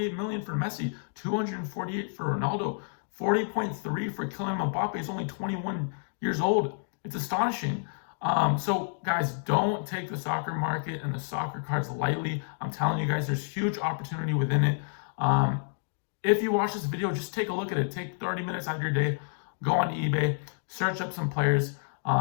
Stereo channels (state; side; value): silent; right; digital silence